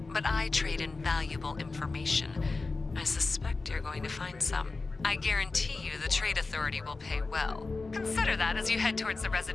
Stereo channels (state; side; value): quieter; right; 3.8 dB